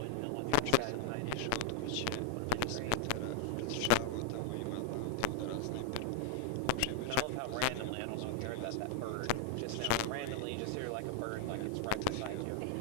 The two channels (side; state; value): both; different; correlation 0.00